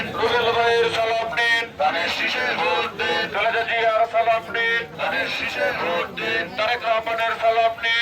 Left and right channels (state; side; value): identical; both; correlation 1.00